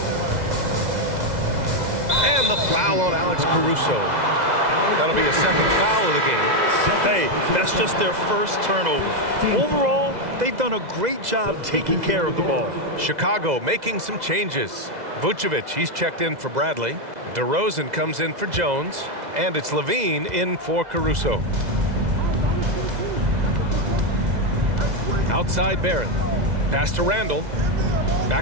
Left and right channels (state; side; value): late; left; 2.0 ms